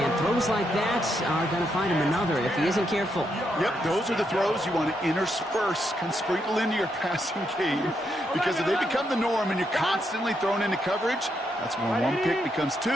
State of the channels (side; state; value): both; normal; correlation 0.79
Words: throws like that are going to find him another if he isn't careful. Yep, those are the throws you want to intersperse, can sprinkle into your passing game. Because if they become the norm and you're constantly thrown into coverage, that's when one pick becomes